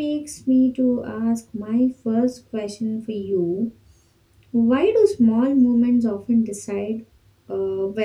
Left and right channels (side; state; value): both; identical; correlation 1.00